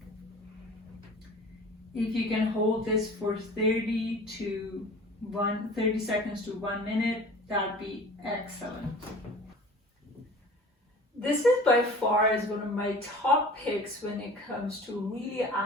If you can hold this for 30 seconds to 1 minute, that'd be excellent. This is by far is one of my top picks when it comes to really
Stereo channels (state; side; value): normal; both; correlation 0.42